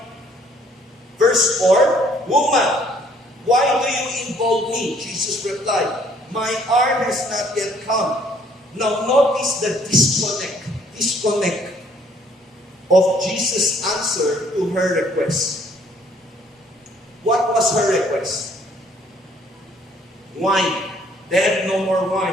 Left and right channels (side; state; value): both; normal; correlation 0.62